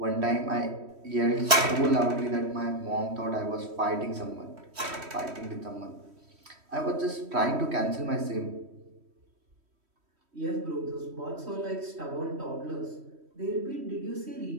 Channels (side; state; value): left; late; 3.1 ms